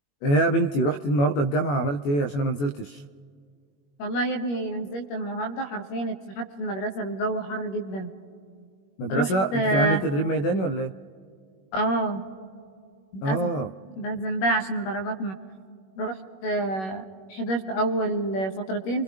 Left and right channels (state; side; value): late; right; 21 ms